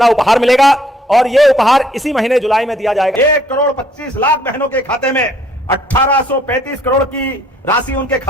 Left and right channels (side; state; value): both; normal; correlation 0.63